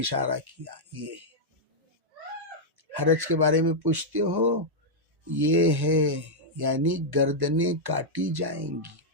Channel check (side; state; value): left; late; 1.1 ms